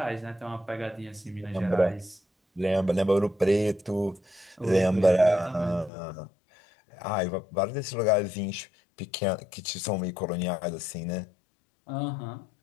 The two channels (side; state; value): right; drops out; at 5.9 s